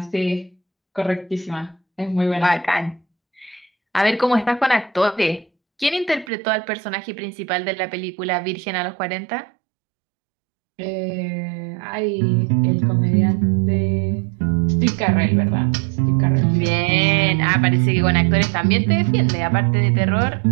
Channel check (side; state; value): left; drops out; at 6.3 s